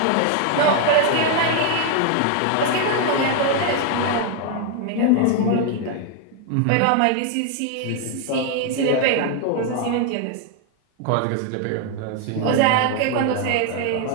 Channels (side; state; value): both; different; correlation 0.00